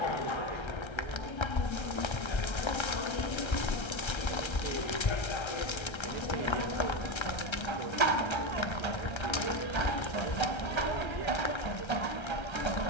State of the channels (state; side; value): late; right; 1.3 ms